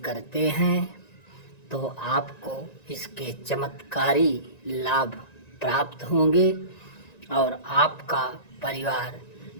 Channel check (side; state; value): right; late; 1.9 ms